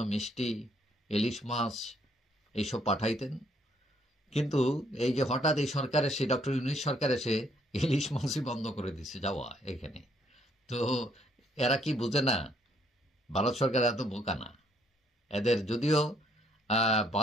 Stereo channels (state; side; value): normal; both; correlation 0.68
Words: মিষ্টি, ইলিশ মাছ এইসব পাঠাইতেন। কিন্তু এই যে হঠাৎ এই সরকার এসে, ডক্টর ইউনূস সরকার এসে ইলিশ মাছই বন্ধ করে দিচ্ছে যাওয়া এখানে। তো এরা কি বুঝে না? ভারত সরকার এত বোকা না। এদের যদিও